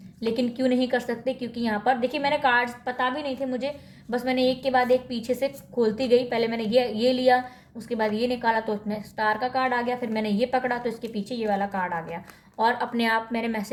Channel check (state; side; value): identical; both; correlation 1.00